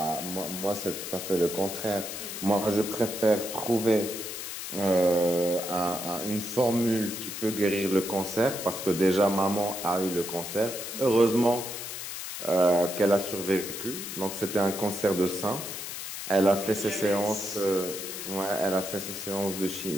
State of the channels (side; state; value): left; noise; hiss, 7 dB below the sound